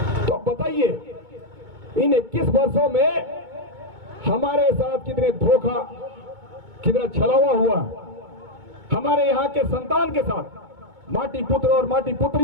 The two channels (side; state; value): left; late; 2.2 ms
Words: तो बताइए, इन 21 वर्षों में हमारे साथ कितने धोखा, कितना छलावा हुआ, हमारे यहाँ के संतान के साथ माटी पुत्र और माटी